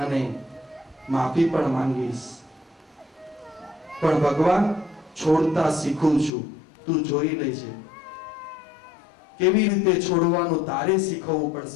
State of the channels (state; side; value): drops out; right; at 6.3 s